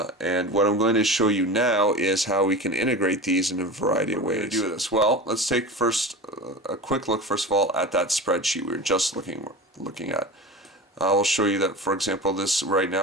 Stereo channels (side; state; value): both; normal; correlation 0.30